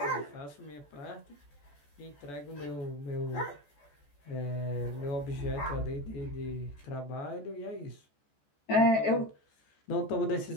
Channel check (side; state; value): right; late; 14 ms